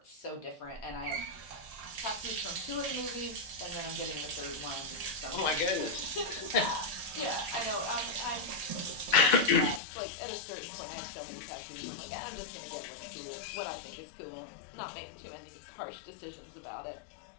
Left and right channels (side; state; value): right; drops out; at 9.8 s